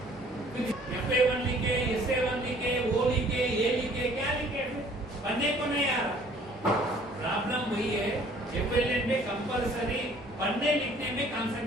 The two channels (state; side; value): normal; both; correlation 0.56